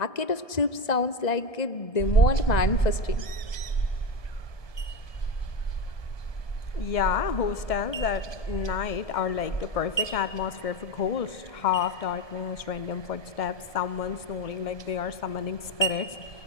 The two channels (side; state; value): right; late; 1.7 ms